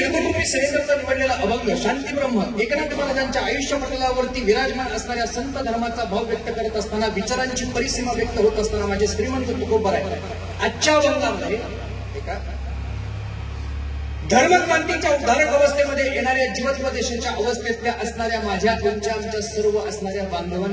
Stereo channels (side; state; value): both; identical; correlation 1.00